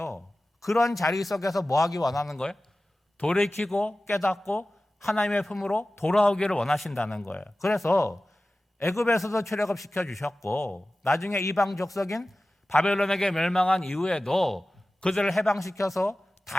그런 자리 속에서 뭐 하기 원하는 거예요? 돌이키고 깨닫고 하나님의 품으로 돌아오기를 원하신다는 거예요. 그래서 애굽에서도 출애굽시켜 주셨고 나중에 이방 족속인 바벨론에게 멸망한 이후에도 그들을 해방시켜서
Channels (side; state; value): both; normal; correlation 0.96